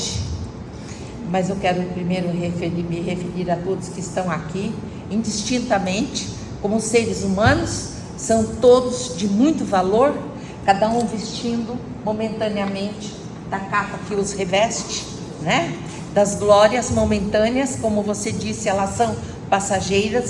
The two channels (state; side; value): identical; both; correlation 1.00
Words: Mas eu quero primeiro me referir a todos que estão aqui, indistintamente, como seres humanos, são todos de muito valor, cada um vestindo momentaneamente da capa que os reveste, né? Das glórias momentâneas, como você disse, elas são